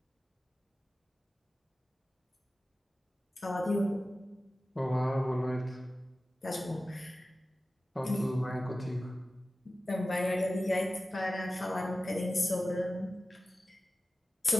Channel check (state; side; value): normal; both; correlation 0.96